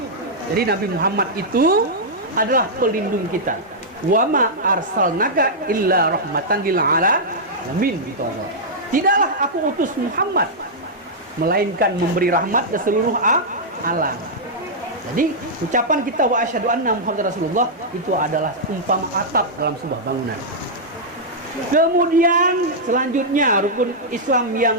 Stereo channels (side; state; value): both; normal; correlation -0.08